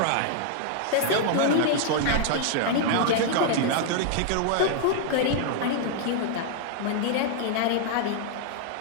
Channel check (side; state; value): both; different; correlation -0.01